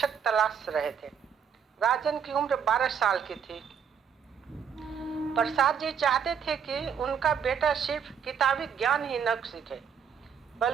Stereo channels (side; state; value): left; quieter; 7.3 dB